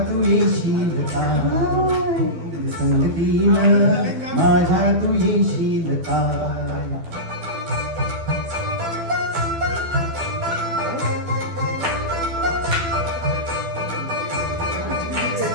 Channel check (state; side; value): late; left; 12 ms